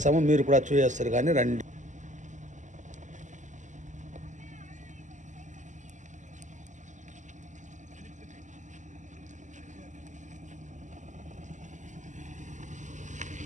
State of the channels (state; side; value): late; left; 0.36 ms